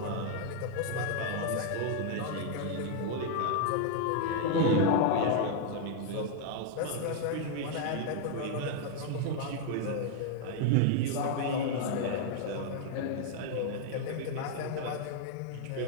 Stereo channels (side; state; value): both; different; correlation -0.01